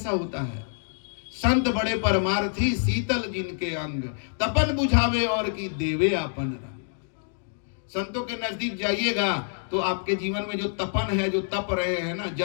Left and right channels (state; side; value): silent; right; digital silence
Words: होता है? संत बड़े परमार्थी, शीतल जिनके अंग, तपन बुझावे और की देवे आपन रंग। संतों के नजदीक जाइएगा तो आपके जीवन में जो तपन है, जो तप रहे हैं ना,